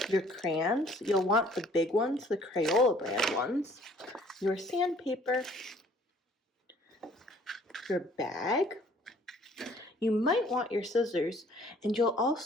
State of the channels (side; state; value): both; normal; correlation 0.57